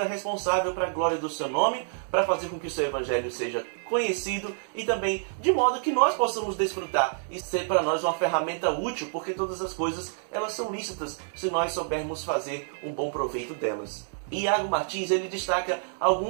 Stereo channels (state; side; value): silent; left; digital silence